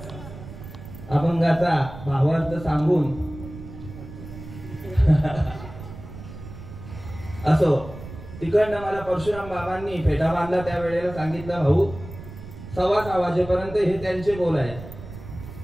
अभंगाचा भावार्थ सांगून असो. तिकडनं मला परशुराम बाबांनी फेटा बांधला त्या वेळेला सांगितलं, भाऊ 6:15 वाजेपर्यंत हे त्यांचे बोल आहे,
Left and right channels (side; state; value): right; noise; rumble, 14 dB below the sound